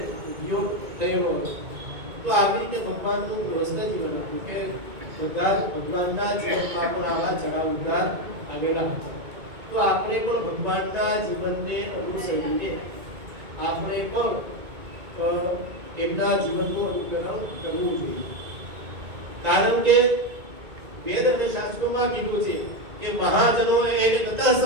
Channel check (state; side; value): late; left; 2.2 ms